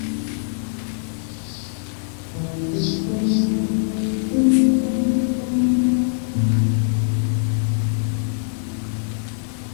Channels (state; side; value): silent; right; digital silence